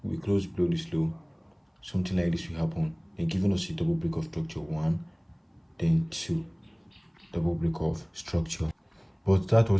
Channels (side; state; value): both; identical; correlation 1.00